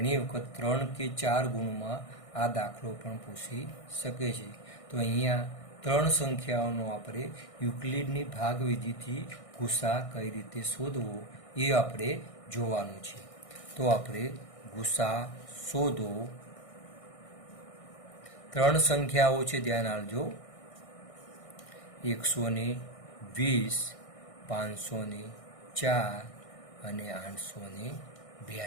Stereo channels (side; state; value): right; late; 1.6 ms